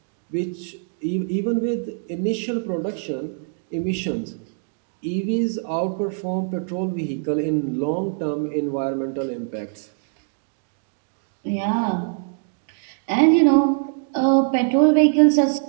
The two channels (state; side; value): silent; left; digital silence